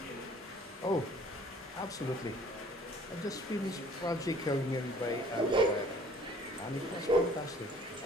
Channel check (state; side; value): normal; both; correlation 0.54